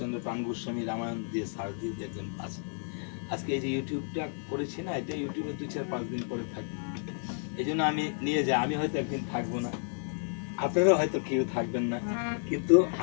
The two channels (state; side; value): silent; right; 57 dB below the other